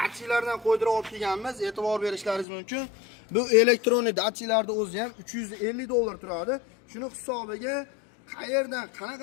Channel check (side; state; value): right; drops out; at 2.5 s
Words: qo'ydirib olib kelganmiz. E'tibor berishlaringiz mumkin. Bu elektronik datchiklarning o'zi ham 350 dollar turadi. Shuni hisobiga qayerdan